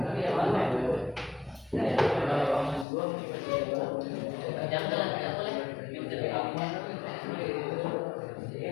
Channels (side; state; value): right; drops out; at 2.9 s